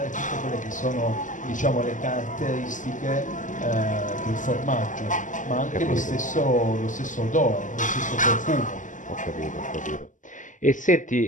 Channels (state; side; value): late; right; 0.37 ms